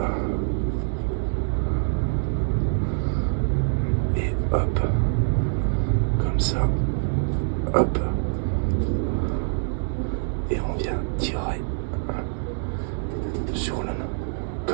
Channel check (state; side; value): silent; left; 62 dB below the other